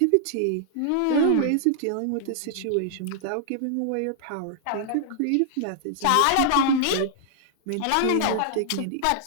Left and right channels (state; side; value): different; both; correlation -0.01